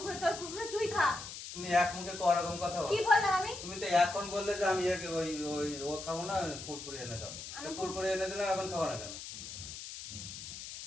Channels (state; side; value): noise; left; hiss, 10 dB below the sound